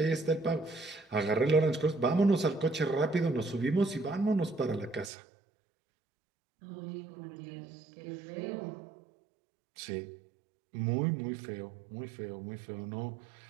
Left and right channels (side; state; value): left; drops out; at 5.1 s